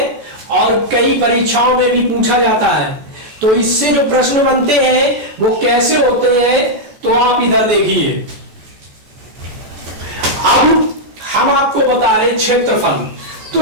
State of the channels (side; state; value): left; late; 14 ms